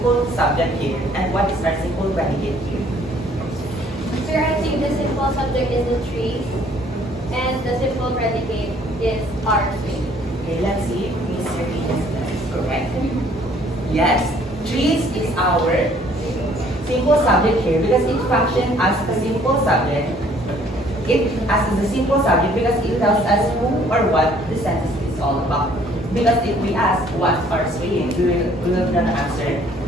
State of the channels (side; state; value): both; normal; correlation 0.59